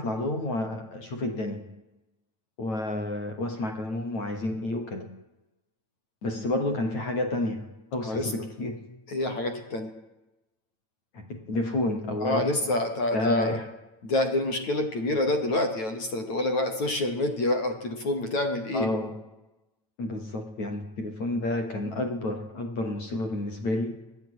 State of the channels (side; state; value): right; late; 9.1 ms